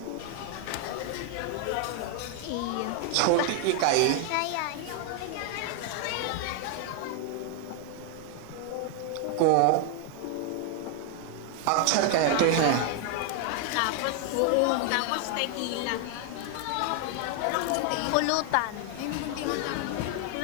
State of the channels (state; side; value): different; both; correlation 0.00